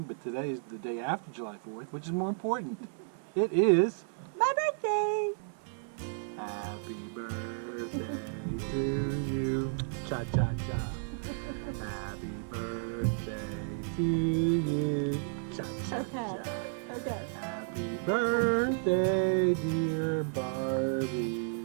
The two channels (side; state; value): left; silent; 56 dB below the other